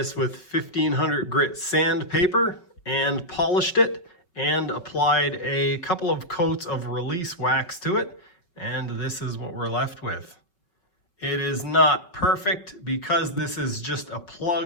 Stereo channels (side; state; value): right; late; 5.5 ms